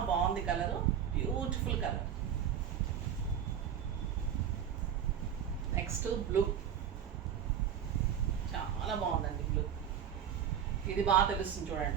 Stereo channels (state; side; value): quieter; left; 8.9 dB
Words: బాగుంది colour, beautiful colour. Next blue, చాలా బాగుందండి బ్లూ. ఇది బాగా తెలుస్తుంది